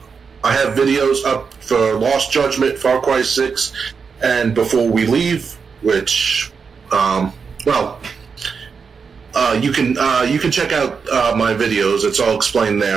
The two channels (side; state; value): left; quieter; 5.7 dB